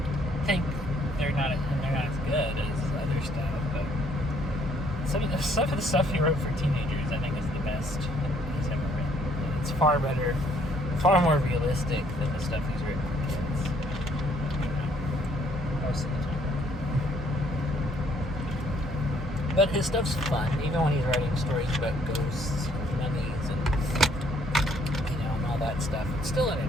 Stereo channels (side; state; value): both; normal; correlation 0.66